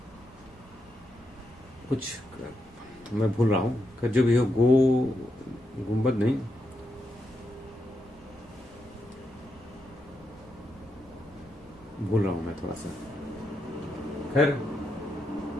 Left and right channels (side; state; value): both; normal; correlation 0.82